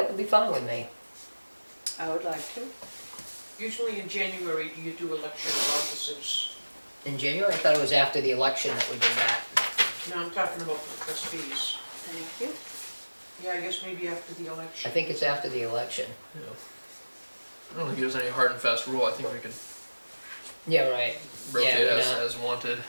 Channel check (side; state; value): both; inverted; correlation -1.00